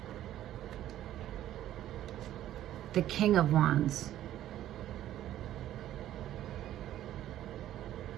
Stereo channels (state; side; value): quieter; left; 12.7 dB